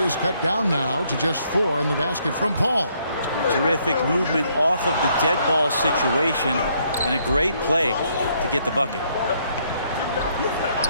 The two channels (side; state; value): both; inverted; correlation -0.70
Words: is cut down now to just 4 in the basket from Paul. Terrific movement off of the dead ball situation and a great play to get the bucket.